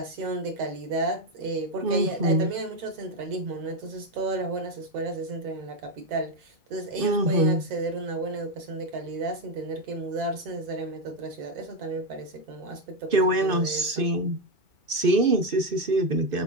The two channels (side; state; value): left; late; 2.6 ms